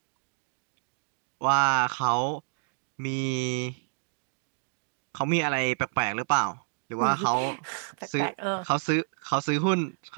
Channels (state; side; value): silent; left; digital silence